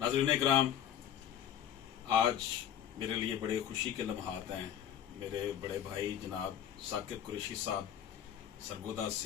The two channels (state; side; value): quieter; right; 9.9 dB